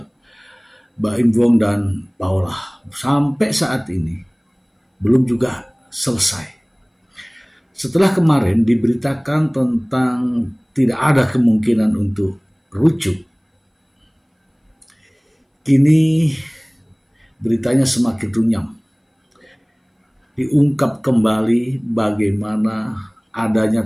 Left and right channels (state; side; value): identical; both; correlation 1.00